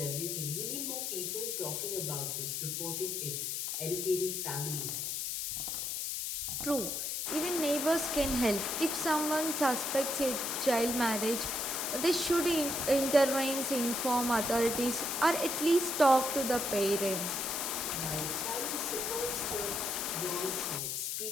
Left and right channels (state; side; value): noise; left; hiss, 2 dB below the sound